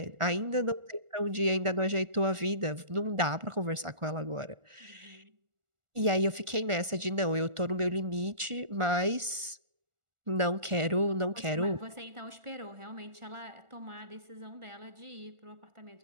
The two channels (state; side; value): late; left; 1.4 ms